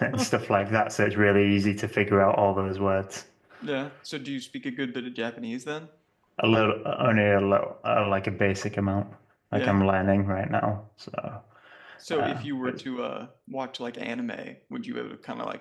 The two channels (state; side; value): identical; both; correlation 1.00